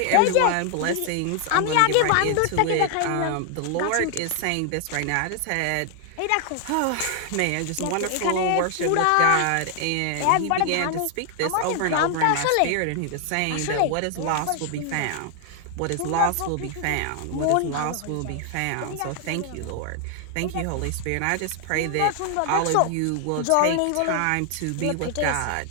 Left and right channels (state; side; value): different; both; correlation 0.00